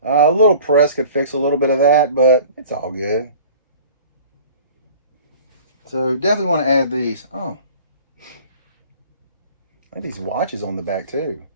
A little press could fix a little bit of that, but it's all good. So definitely want to add these. Oh, I have these watches on the back too.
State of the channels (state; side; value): inverted; both; correlation -0.45